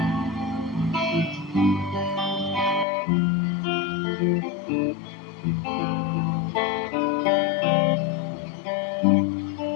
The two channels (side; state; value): right; drops out; at 2.9 s